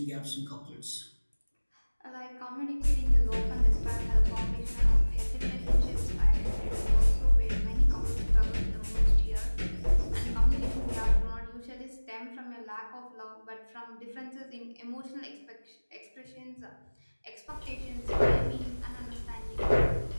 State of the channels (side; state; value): both; inverted; correlation -1.00